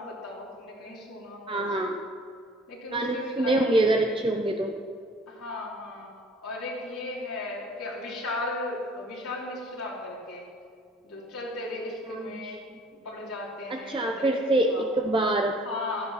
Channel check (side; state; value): both; normal; correlation 0.52